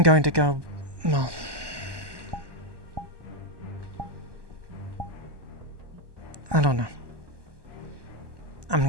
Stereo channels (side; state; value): left; late; 1.2 ms